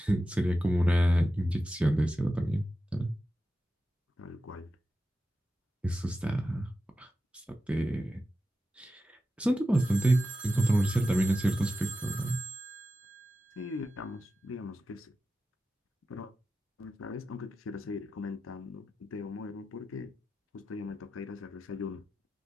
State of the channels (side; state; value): both; normal; correlation 0.92